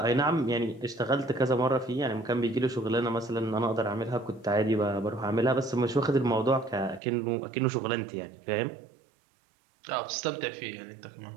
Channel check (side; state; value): left; drops out; at 7.0 s